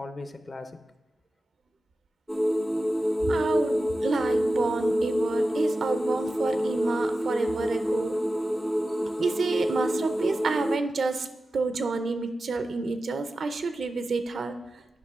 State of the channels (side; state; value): both; normal; correlation 0.93